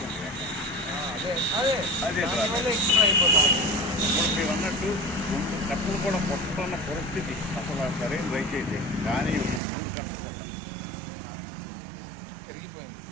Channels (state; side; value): drops out; left; at 9.6 s